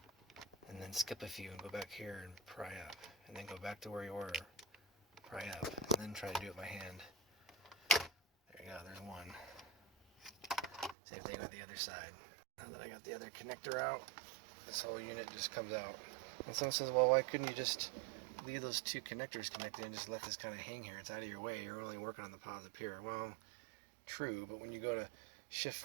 And then skip a few and go back here and pry up. And then go back to where you were, pry up, and then try to do it by hand. There you go, there's one. Same thing with the other side. Now that I got the other connector out, this whole unit just comes out. And someone says, well, why couldn't you just leave those 2 connectors connected and just let this kind of hang here? It's out of your way. You're only working on the positive here. Well, true, but when you go to shift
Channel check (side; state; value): left; drops out; at 11.0 s